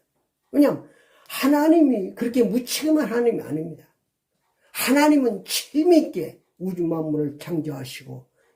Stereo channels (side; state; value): both; identical; correlation 1.00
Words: 왜냐하면 하나님이 그렇게 무책임한 하나님이 아닙니다. 하나님은 책임있게 우주 만물을 창조하시고